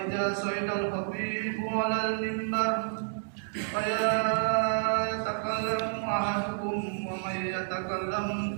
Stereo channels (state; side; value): silent; left; digital silence